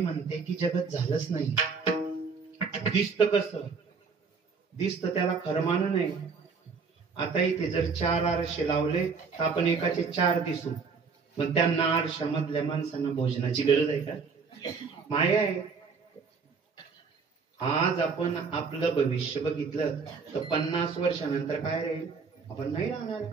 की जगत झालंच नाही. दिसत कसं दिसत, त्याला खरं मानू नये. आता इथे जर 4 आरशे लावले तर आपण एकाचे 4 दिसू, मग त्यांना आरशामधल्या माणसांना भोजनाची गरज आहे का? माया आहे. आज आपण आपलं भविष्य बघितलं तर 50 वर्षानंतर काय राहील आपण नाही राहणार.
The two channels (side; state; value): left; quieter; 5.2 dB